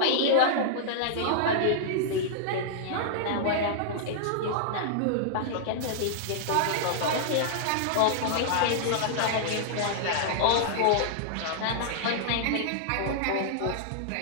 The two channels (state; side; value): different; both; correlation -0.01